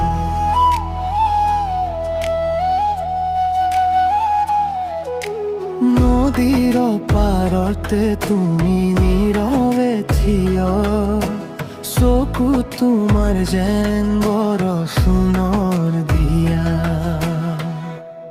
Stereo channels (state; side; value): identical; both; correlation 1.00